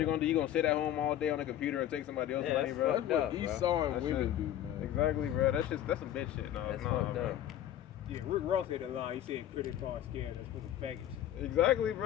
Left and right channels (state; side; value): quieter; right; 11.7 dB